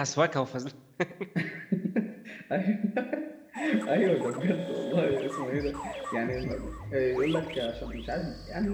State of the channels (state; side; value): identical; both; correlation 1.00